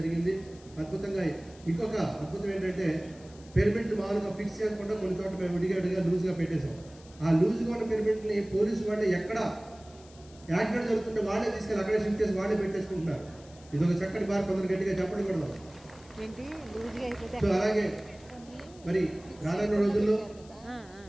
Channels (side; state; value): left; noise; hiss, 24 dB below the sound